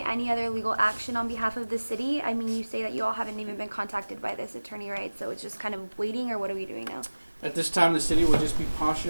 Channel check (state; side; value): inverted; both; correlation -1.00